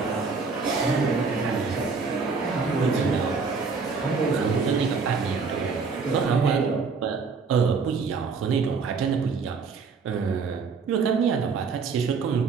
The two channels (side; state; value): left; quieter; 5.0 dB